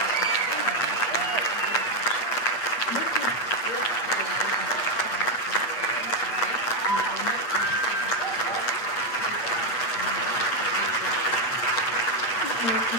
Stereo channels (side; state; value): right; late; 8.8 ms